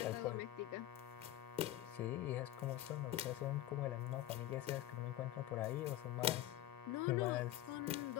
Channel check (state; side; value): quieter; right; 14.0 dB